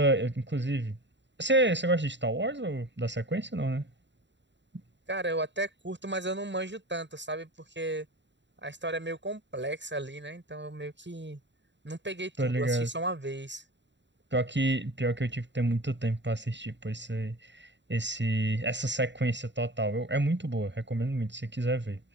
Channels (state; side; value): late; left; 0.52 ms